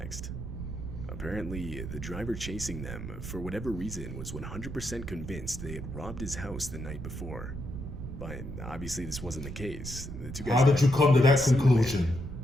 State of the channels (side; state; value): right; noise; rumble, 9 dB below the sound